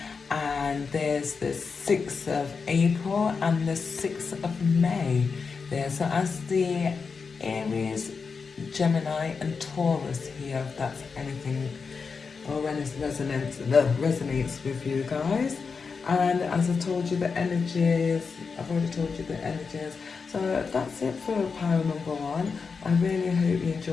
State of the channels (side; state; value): right; quieter; 5.2 dB